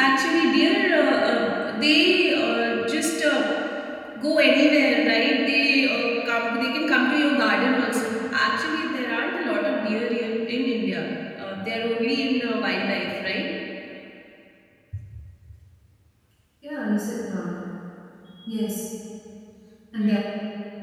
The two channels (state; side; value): identical; both; correlation 1.00